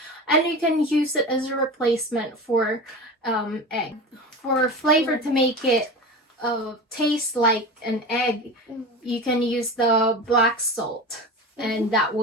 and you can use it as a replacement for egg. For flavor to make it taste like an egg, you can use the black salt, and that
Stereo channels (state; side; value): normal; both; correlation 0.29